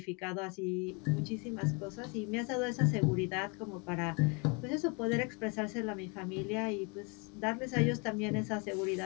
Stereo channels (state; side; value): quieter; right; 31.9 dB